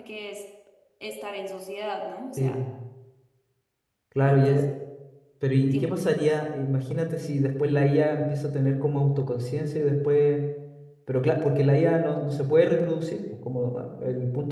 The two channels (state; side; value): identical; both; correlation 1.00